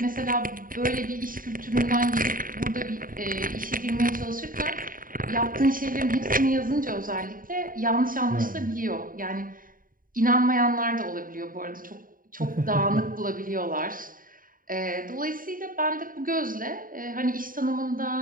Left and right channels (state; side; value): late; left; 0.40 ms